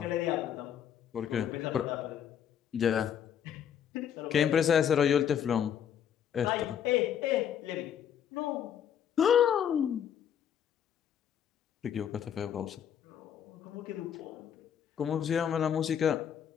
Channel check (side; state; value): right; quieter; 8.9 dB